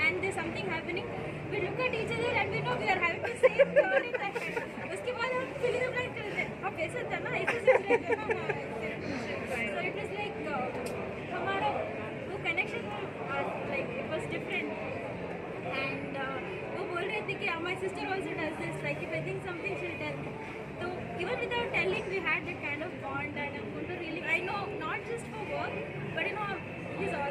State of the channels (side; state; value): both; identical; correlation 1.00